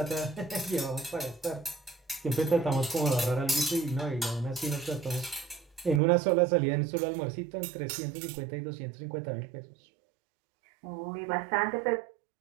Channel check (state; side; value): drops out; left; at 6.0 s